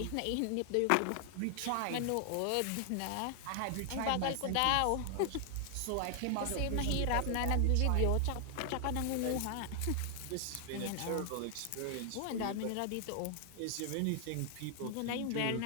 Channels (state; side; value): different; both; correlation 0.00